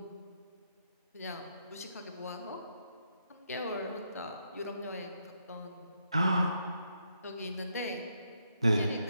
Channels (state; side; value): inverted; both; correlation -0.77